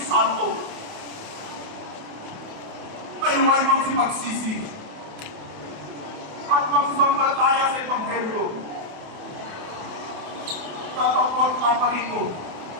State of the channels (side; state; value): left; late; 28 ms